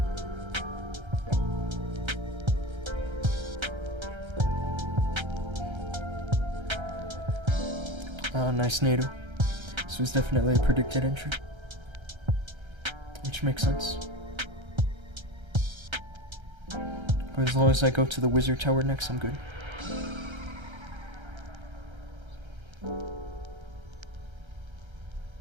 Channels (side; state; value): left; late; 1.3 ms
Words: Nice NATO. This was definitely a predicted entry. Which makes sense. But as long as I go to the wizard tower next, I'm good.